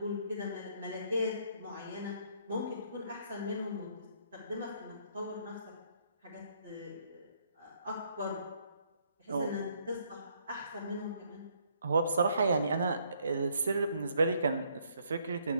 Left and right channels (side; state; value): both; inverted; correlation -0.68